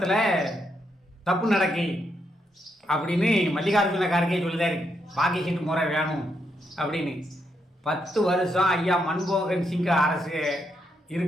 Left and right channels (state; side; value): normal; both; correlation 0.79